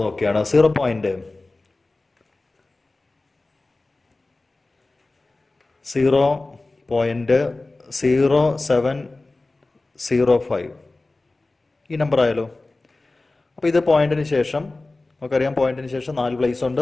നോക്കിയാണ് 0.0705 ഈ നമ്പർ ആയാലോ. അപ്പോൾ ഇത് പോയിന്റിന് ശേഷം നമുക്കറിയാം, പോയിന്റിന് ശേഷം 4 പ്ലേസ് ഉണ്ട്.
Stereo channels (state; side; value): quieter; right; 3.2 dB